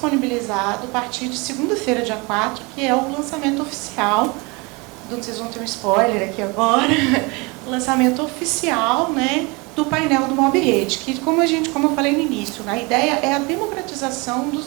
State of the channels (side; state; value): left; quieter; 27.5 dB